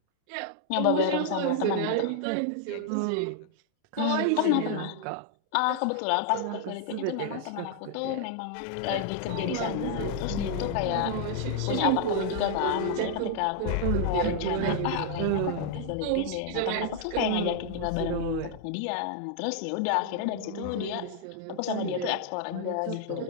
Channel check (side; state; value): both; different; correlation 0.00